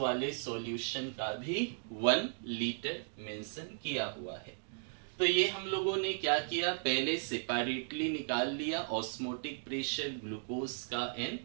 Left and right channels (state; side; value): silent; left; digital silence